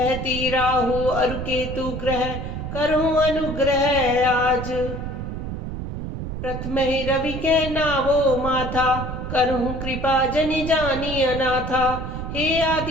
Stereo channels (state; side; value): noise; right; rumble, 6 dB below the sound